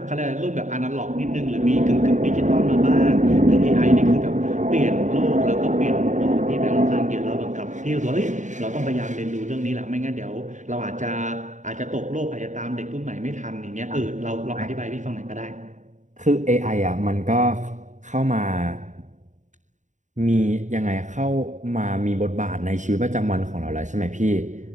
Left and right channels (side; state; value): left; late; 0.36 ms